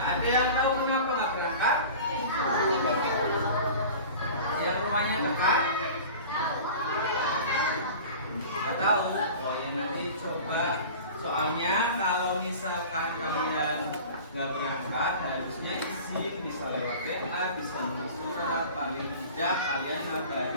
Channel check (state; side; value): inverted; both; correlation -0.38